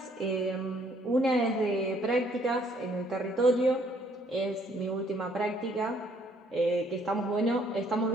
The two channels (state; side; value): normal; both; correlation 0.64